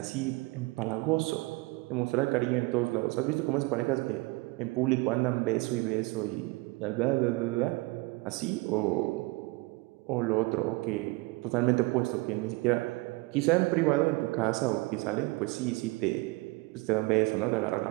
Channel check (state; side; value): quieter; left; 23.7 dB